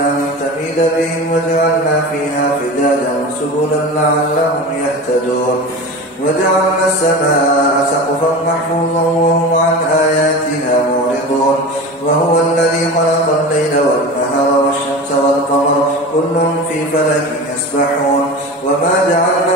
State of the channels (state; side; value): normal; both; correlation 0.30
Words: تميد بهم وجعلنا فيها فجاجا سبلا لعلهم يهتدون وجعلنا السماء سقفا محفوظا وهم عن آياتها معرضون وهو الذي خلق الليل والنهار والشمس والقمر كل في فلك يسبحون وما